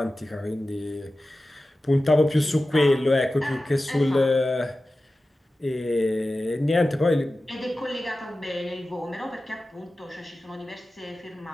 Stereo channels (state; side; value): normal; both; correlation 0.95